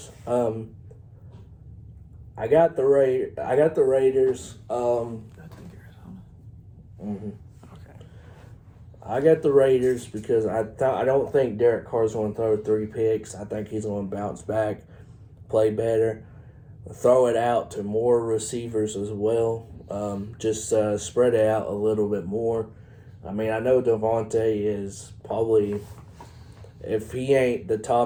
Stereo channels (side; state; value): both; identical; correlation 1.00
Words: I got the Raiders. I think Arizona. Mm-hmm. Okay. I got the Raiders because I don't think Derek Carr's going to throw 3 picks. I think he's going to bounce back, play better, throw it out to more receivers as well. Just spread it out a little bit more. I mean, I know Devontae is probably, if he ain't the